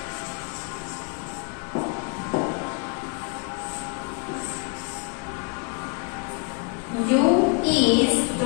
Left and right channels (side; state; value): right; quieter; 34.0 dB